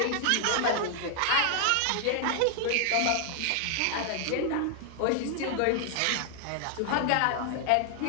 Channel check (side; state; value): both; different; correlation 0.00